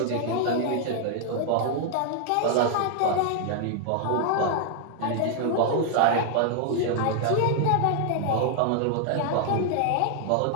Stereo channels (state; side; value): different; both; correlation 0.00